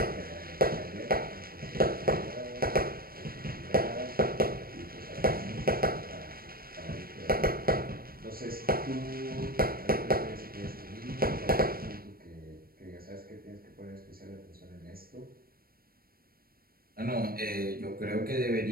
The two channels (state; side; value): late; left; 0.43 ms